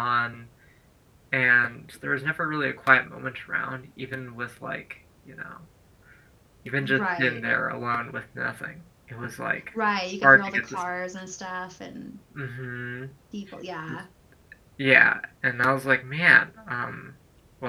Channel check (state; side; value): identical; both; correlation 1.00